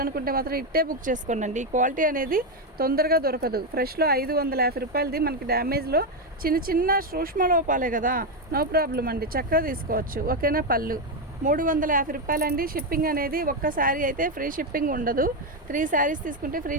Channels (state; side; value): normal; both; correlation 0.07